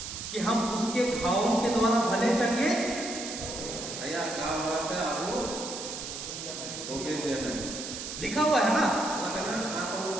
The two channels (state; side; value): noise; right; hiss, 7 dB below the sound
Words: कि हम उसके घावों के द्वारा भले चंगे लिखा हुआ है ना।